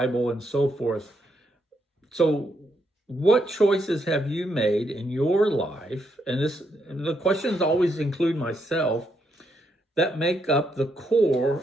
and so forth. So what choices have you made in your life, and the questions always include myself, that make up the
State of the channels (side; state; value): both; normal; correlation 0.78